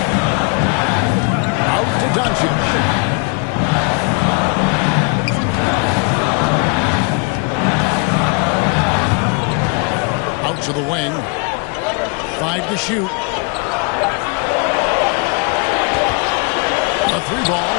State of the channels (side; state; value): right; quieter; 33.3 dB